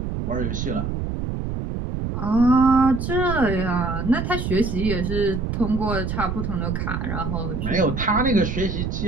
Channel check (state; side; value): noise; right; rumble, 3 dB below the sound